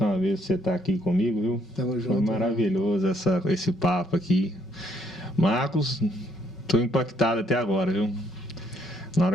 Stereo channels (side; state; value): both; normal; correlation 0.69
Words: vez por você estar aqui comigo, viu? Tamo junto. Foi maravilhoso esse papo aqui. Marcos, estou impactado até agora, viu? Na